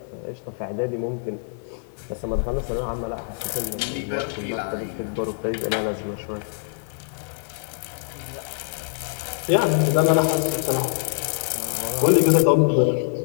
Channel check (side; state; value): right; silent; digital silence